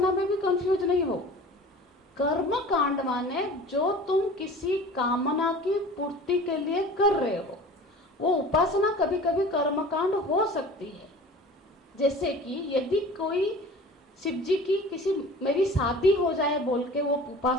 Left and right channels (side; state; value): both; normal; correlation 0.42